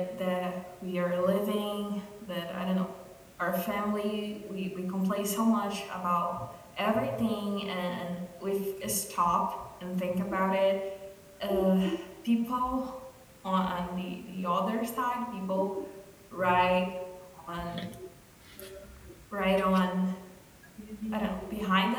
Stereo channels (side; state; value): both; identical; correlation 1.00